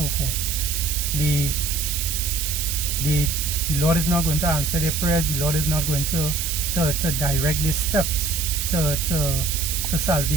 forth. The Lord is not going to answer their prayers. The Lord is not going to direct their steps to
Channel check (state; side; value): noise; right; hiss, 2 dB below the sound